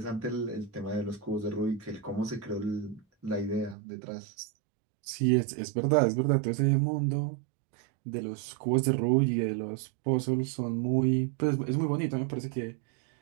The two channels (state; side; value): drops out; left; at 3.8 s